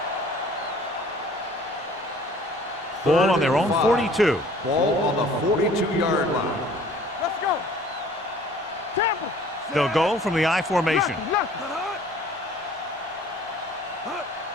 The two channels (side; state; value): both; normal; correlation 0.52